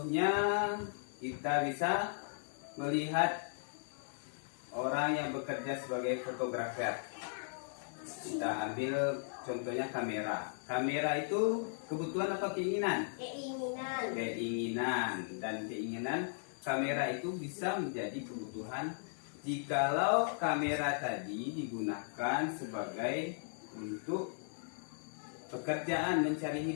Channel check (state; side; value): silent; right; 53 dB below the other